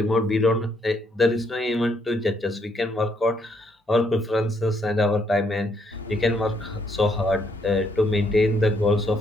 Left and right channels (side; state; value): both; normal; correlation 0.72